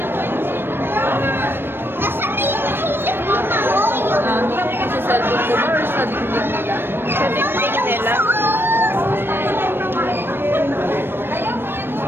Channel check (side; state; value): left; late; 0.10 ms